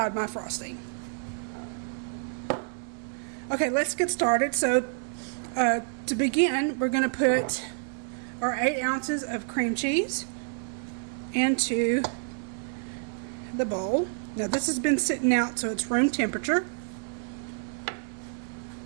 my frosting. Okay, let's get started. So to begin, we're going to put our 8 ounces of cream cheese into the bowl. Now this has been sitting out, so it's room temperature.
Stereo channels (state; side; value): silent; left; 59 dB below the other